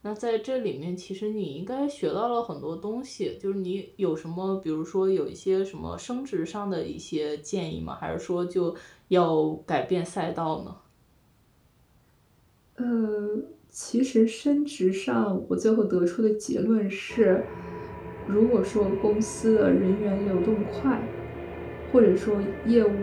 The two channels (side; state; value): both; identical; correlation 1.00